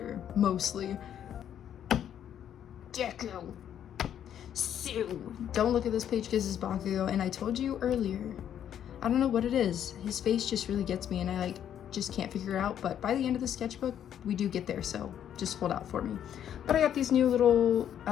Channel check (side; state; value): right; quieter; 9.8 dB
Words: mostly. Deku. Sue. Don't look at this page because it's Bakugo, and I told you earlier, I don't know what it is. His face just really gets me, and I just can't figure it out, but by the end of the sketchbook, we do get there, so just hold out for me. But I got these new little